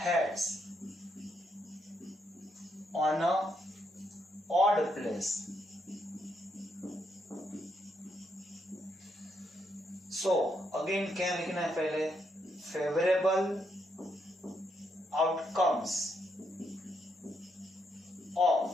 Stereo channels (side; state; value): both; normal; correlation 0.78